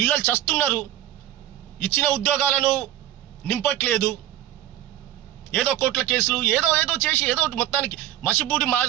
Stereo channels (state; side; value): quieter; left; 12.9 dB